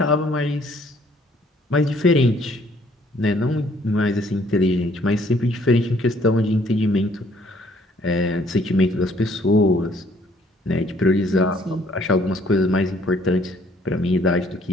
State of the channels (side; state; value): both; normal; correlation 0.62